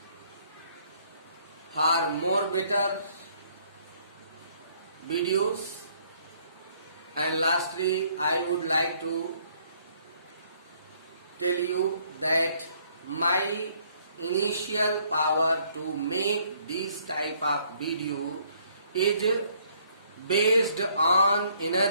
for more better videos, and lastly I would like to tell you that my initial power to make this type of video is based on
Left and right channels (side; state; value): both; inverted; correlation -0.65